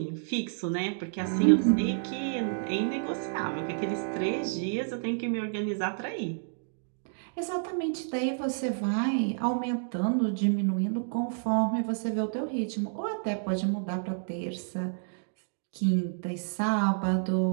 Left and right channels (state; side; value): silent; left; digital silence